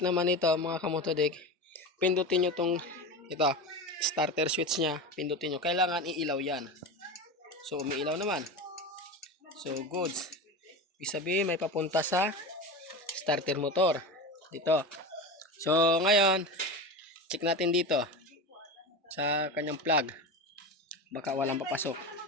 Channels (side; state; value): both; normal; correlation 0.25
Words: ito mga kamotodik, pindutin nyo itong starter switch nya. Pindutin nyo. Kailangan iilaw yan. So umiilaw naman. So goods. Ibig sabihin may papunta sa starter motor. Dito. So ngayon, check natin dito sa kanyang plug. Baka walang papasok.